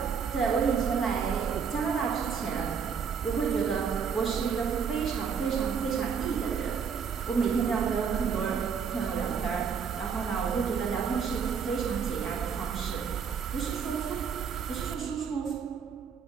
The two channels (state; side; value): quieter; left; 6.5 dB